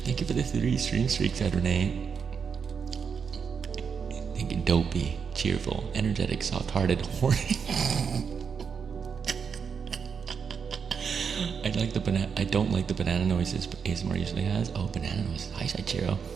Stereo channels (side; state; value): left; quieter; 6.3 dB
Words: Thank you for the 3 stream streaks, Renee. Thank you, Dopey. cheerful, energetic, soft-hearted, horny. I don't like the banana noises ASMR usually has. Oh, banana noises. Hi, Saichiro.